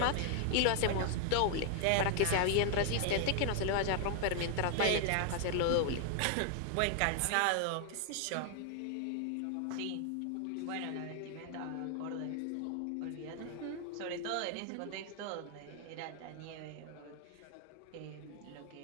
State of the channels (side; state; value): both; different; correlation 0.00